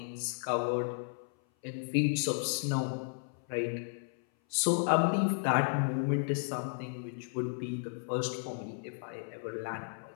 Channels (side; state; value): right; silent; 55 dB below the other